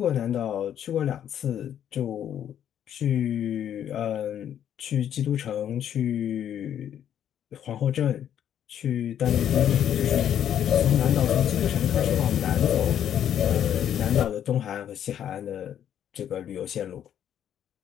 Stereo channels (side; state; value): right; quieter; 9.9 dB